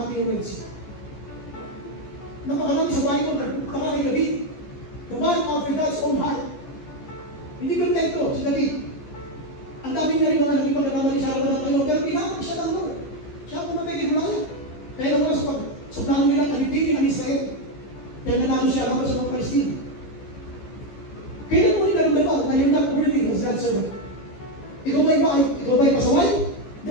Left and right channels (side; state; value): right; late; 14 ms